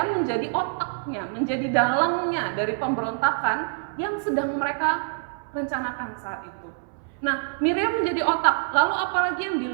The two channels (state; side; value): silent; left; 61 dB below the other